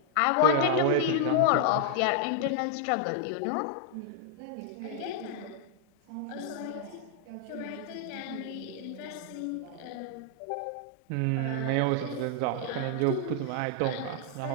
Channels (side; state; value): both; different; correlation -0.01